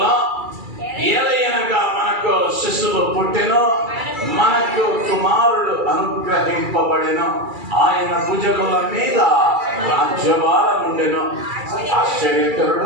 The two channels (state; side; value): late; left; 2.3 ms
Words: ఏలయనగా మనకు శిశువు పుట్టెను, మనకు కుమారుడు అనుగ్రహింపబడెను, ఆయన భుజముల మీద రాజ్యభారం ఉండెను,